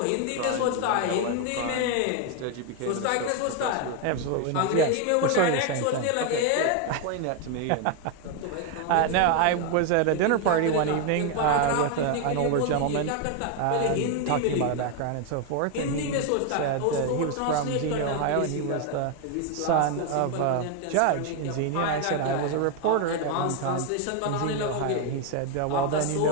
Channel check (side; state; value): both; different; correlation 0.01